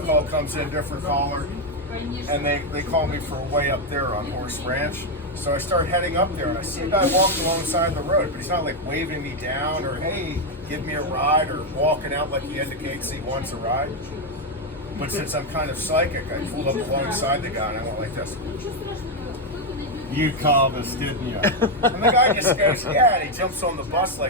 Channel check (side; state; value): both; normal; correlation 0.04